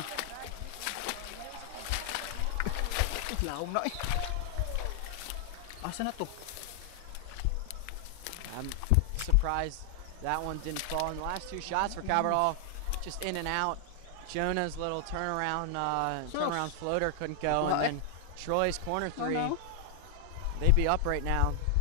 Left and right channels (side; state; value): both; different; correlation 0.00